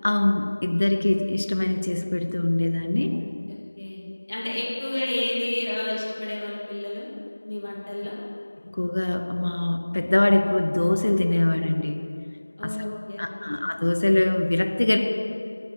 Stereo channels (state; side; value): inverted; both; correlation -1.00